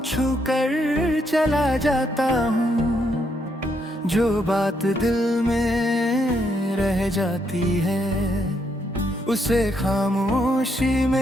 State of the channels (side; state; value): both; normal; correlation 0.76